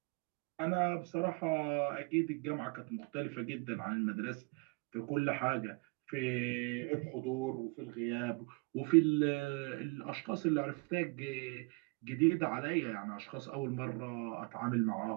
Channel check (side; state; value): left; quieter; 31.2 dB